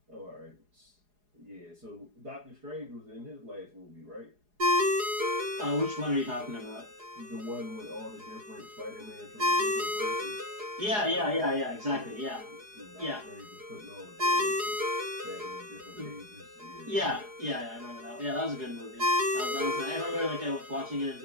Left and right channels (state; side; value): late; left; 4.8 ms